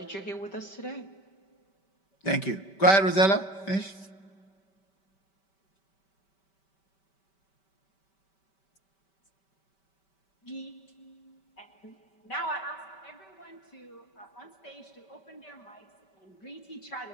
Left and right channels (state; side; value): late; right; 5.2 ms